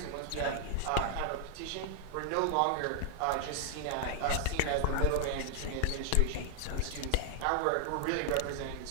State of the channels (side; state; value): both; different; correlation 0.00